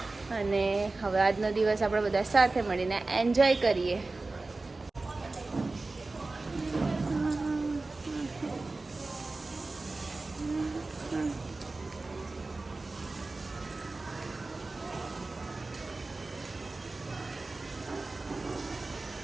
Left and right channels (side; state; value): left; quieter; 3.4 dB